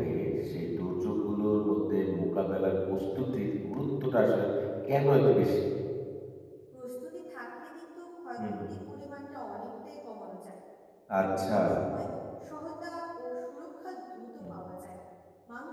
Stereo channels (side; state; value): both; identical; correlation 1.00